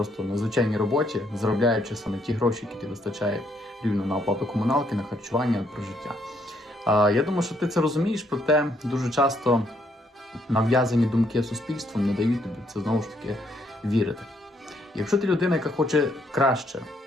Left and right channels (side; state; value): both; normal; correlation 0.71